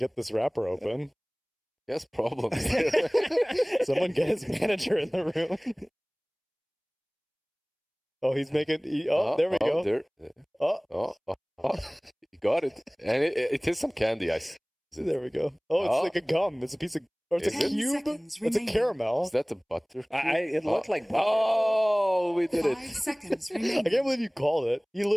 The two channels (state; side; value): identical; both; correlation 1.00